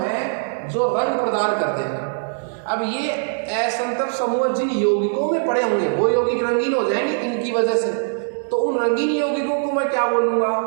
जो रंग प्रदान करते हैं। अब ये असंतृप्त समूह जिन यौगिकों में पड़े होंगे वो यौगिक रंगीन हो जाएंगे इनकी वजह से, तो उन रंगीन यौगिकों को मैं क्या बोलूंगा,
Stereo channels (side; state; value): left; silent; digital silence